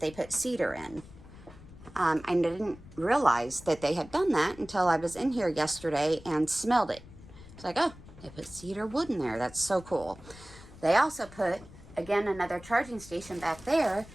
put cedar in. I didn't realize that they had done that until I was in here yesterday and smelled it. It's like, oh, they put cedar wood in there. That's so cool. They also put, again, another charging station back there,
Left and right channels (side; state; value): left; noise; rumble, 19 dB below the sound